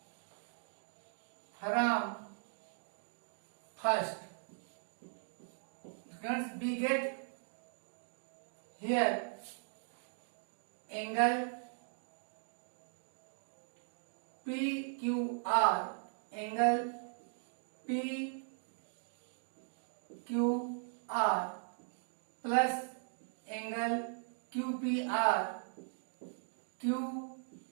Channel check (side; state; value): left; silent; digital silence